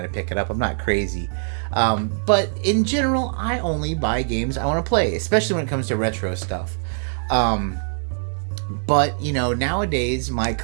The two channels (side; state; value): left; silent; 56 dB below the other